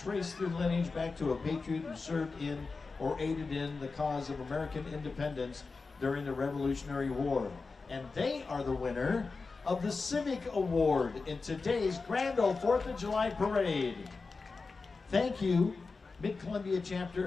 their lineage back to a patriot who served in or aided in the cause of American independence during the Revolutionary War. And they are the winner of the Civic Award in today's Grand Ole 4th of July Parade. Thank you, Mid-Columbia chapter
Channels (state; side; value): quieter; right; 4.2 dB